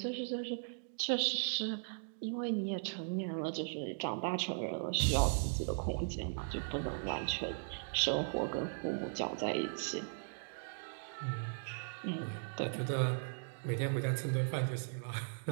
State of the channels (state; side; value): silent; left; digital silence